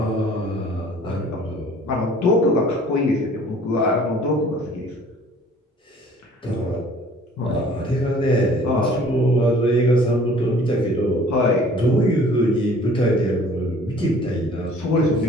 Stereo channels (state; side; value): normal; both; correlation 0.52